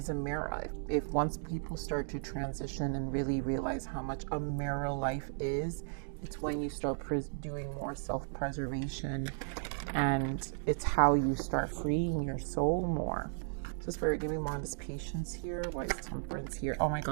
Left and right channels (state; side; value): silent; left; digital silence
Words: a mirror. If once people start to transition and really realize how much a mirror life is, it's when you start doing more self-preservation, and it's how you start freeing your soul more. So Spirit, give me more on this patience here. Why is Temperance here? Oh my